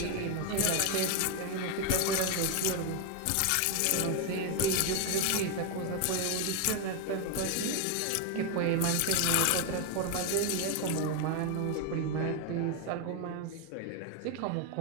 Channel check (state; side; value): different; both; correlation 0.01